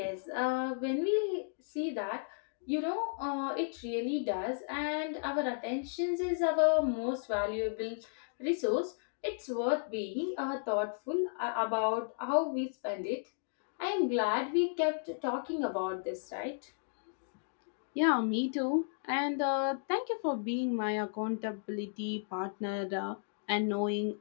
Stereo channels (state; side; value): silent; right; digital silence